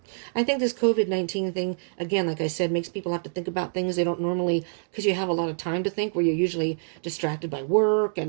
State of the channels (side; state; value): left; silent; digital silence